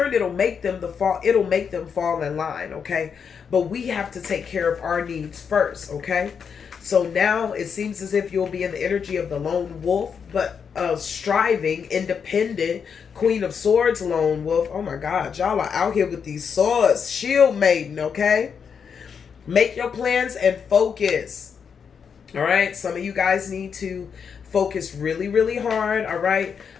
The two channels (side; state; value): right; quieter; 6.7 dB